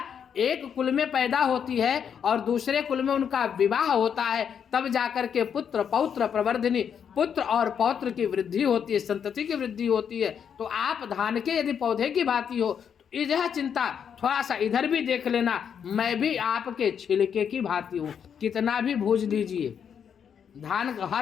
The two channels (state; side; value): quieter; right; 7.7 dB